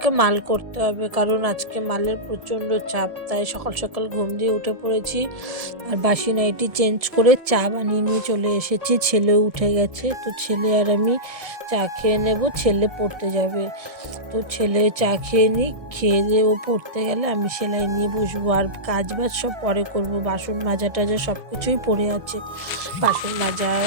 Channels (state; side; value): late; left; 1.7 ms